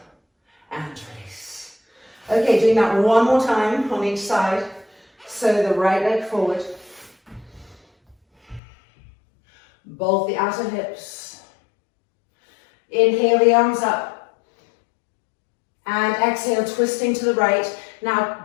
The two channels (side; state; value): right; drops out; at 8.6 s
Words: And release. Okay, doing that one more time on each side. So the right leg forward. Bolt the outer hips. Inhale the arms up. And exhale, twisting to the right.